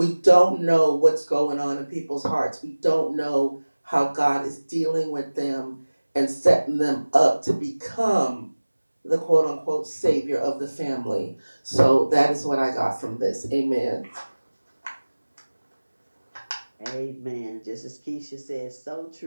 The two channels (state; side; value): inverted; both; correlation -1.00